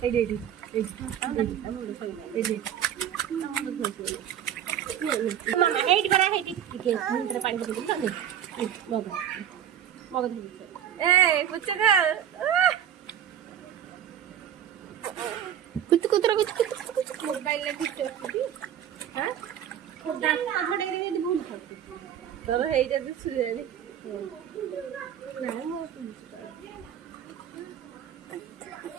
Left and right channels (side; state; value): left; quieter; 9.8 dB